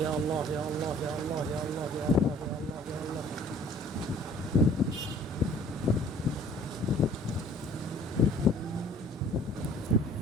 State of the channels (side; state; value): both; normal; correlation 0.53